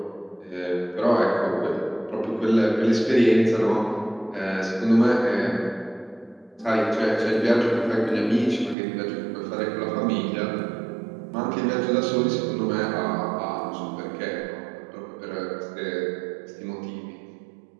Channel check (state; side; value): drops out; left; at 8.8 s